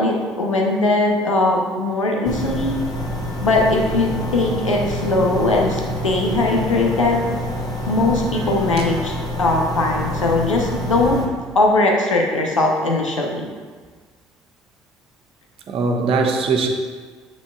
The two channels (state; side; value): normal; both; correlation 0.46